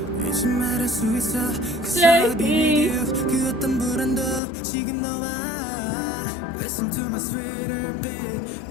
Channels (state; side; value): drops out; right; at 4.4 s